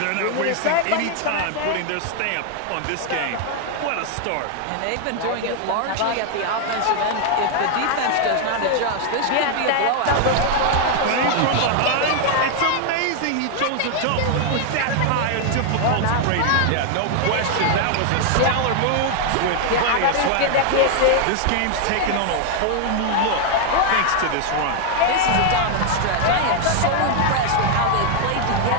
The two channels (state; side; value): different; both; correlation 0.00